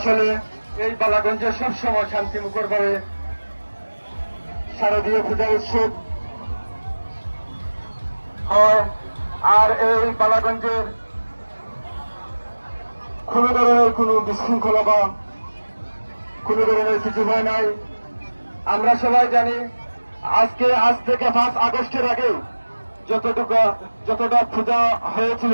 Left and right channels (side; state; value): both; inverted; correlation -1.00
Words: এই বালাগঞ্জে সবসময় শান্তিমুখর ভাবে শারদীয় পূজা উৎসব হয়, আর এই বালাগঞ্জের কোন ধরনের কোন বিশৃঙ্খলা বা কোন ধরনের কিছু হয় নাই। আমরা সবাই জানি আজ থেকে 5 আগস্টের আগে যতটা পূজা হয়েছিল,